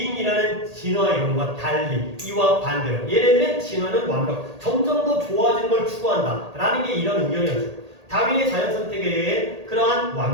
진화 이론과 달리 이와 반대로 얘네들은 진화는 완벽, 점점 더 좋아지는 걸 추구한다 라는 게 이런 의견이었죠. 다윈의 자연선택에 그러한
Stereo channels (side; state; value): left; late; 1.8 ms